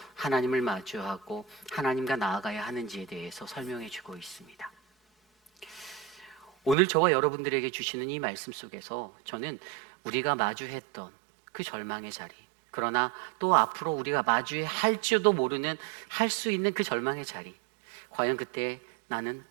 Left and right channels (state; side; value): drops out; left; at 6.8 s